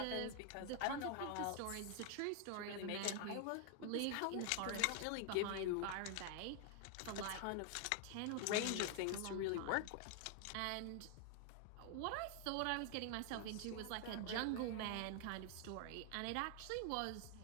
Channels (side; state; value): both; different; correlation 0.00